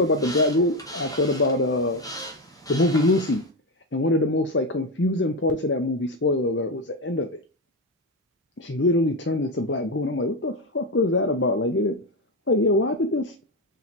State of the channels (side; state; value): both; normal; correlation 0.12